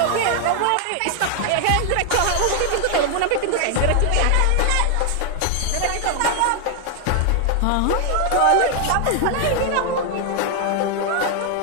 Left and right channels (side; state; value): both; different; correlation 0.00